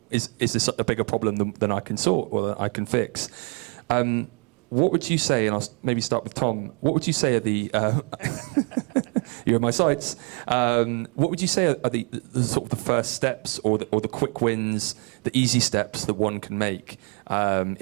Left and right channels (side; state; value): left; quieter; 35.9 dB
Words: is this a bigger problem than I can sort or that I can fix. What would you say, and I'll maybe start with Tom, what would you say are the, you're in my sights, what would you say are the sort of the first steps or the quick wins, the easy steps that one can make?